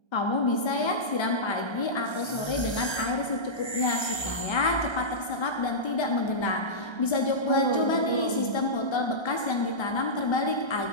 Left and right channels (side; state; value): right; late; 1.3 ms